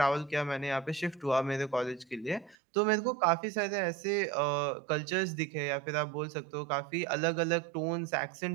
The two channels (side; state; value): left; drops out; at 2.6 s